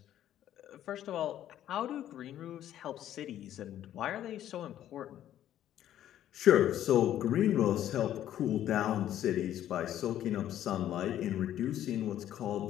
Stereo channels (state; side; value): quieter; right; 11.7 dB